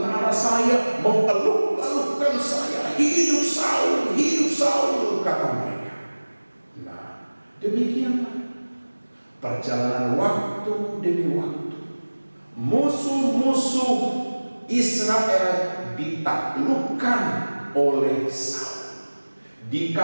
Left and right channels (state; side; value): inverted; both; correlation -1.00